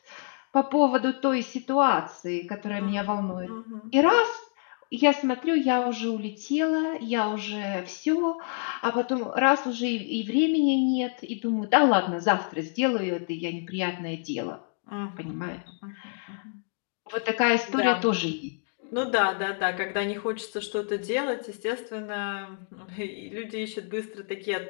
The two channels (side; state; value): right; silent; 60 dB below the other